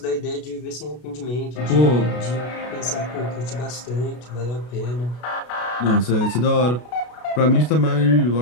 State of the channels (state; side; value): late; right; 33 ms